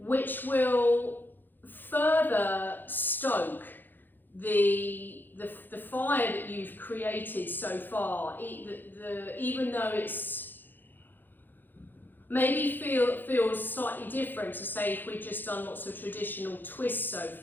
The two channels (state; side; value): late; right; 0.090 ms